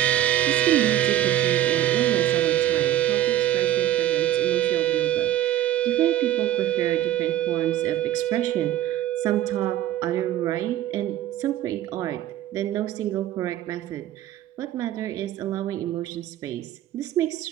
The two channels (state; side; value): quieter; left; 12.7 dB